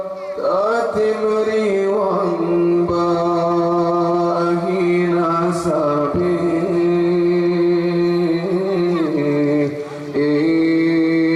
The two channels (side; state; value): both; identical; correlation 1.00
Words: liwang bahina sabi